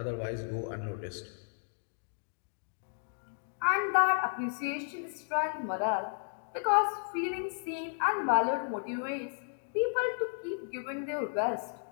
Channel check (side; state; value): right; silent; digital silence